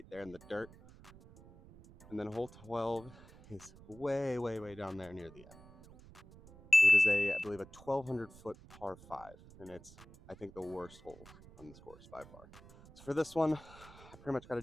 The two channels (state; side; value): noise; right; rumble, 21 dB below the sound